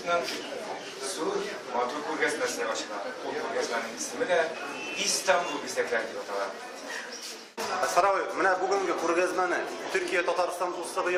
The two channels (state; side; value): identical; both; correlation 1.00